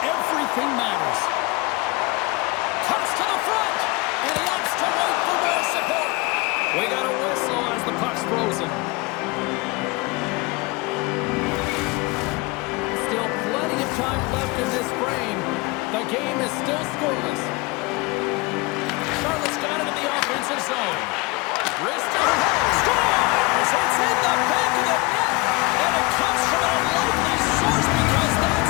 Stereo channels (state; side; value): quieter; right; 24.5 dB